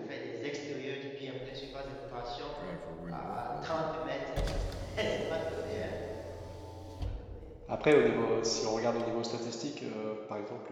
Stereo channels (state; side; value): identical; both; correlation 1.00